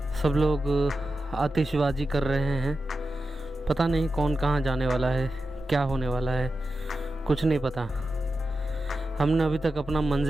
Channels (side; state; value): both; normal; correlation 0.91